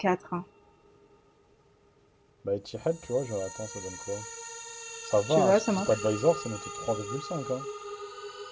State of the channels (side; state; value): both; identical; correlation 1.00